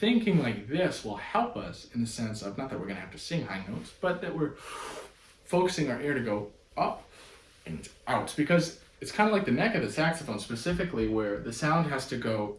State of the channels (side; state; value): both; identical; correlation 1.00